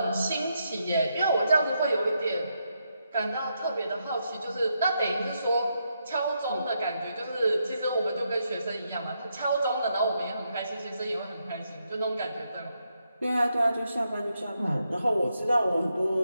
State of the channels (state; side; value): inverted; both; correlation -0.81